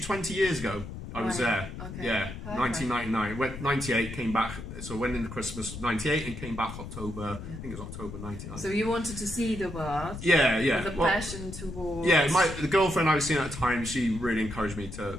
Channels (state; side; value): noise; left; rumble, 10 dB below the sound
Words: 20 years ago. I was there. Okay. Yeah, perfect. 1999. Went 98, came back. So went into Christmas of 98 and came back October. I think it was October 99. So you wanted to see the world. Yeah. With a passion towards. Yeah, the girlfriend I was seeing at the time, she really encouraged me